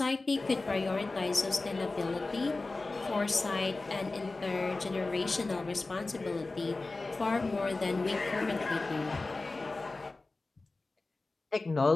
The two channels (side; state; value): right; quieter; 3.4 dB